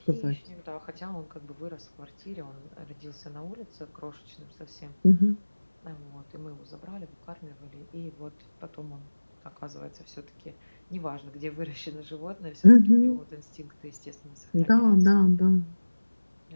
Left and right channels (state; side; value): inverted; both; correlation -1.00